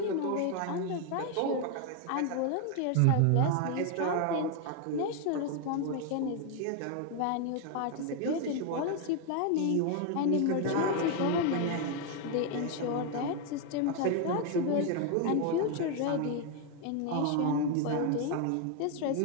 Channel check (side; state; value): both; different; correlation 0.00